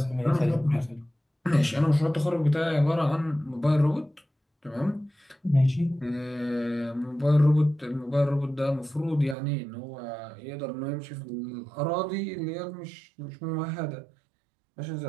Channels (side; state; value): left; drops out; at 9.3 s